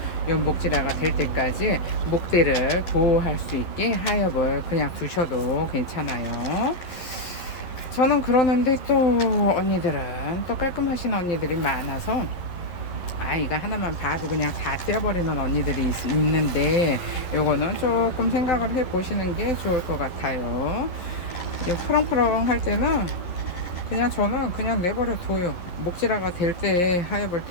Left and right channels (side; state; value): right; late; 11 ms